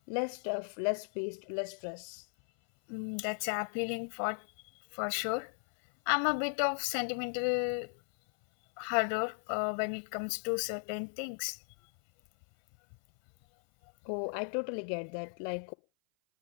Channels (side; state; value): right; silent; 54 dB below the other